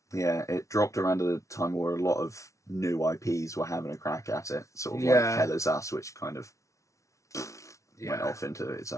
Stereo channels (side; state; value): right; late; 0.15 ms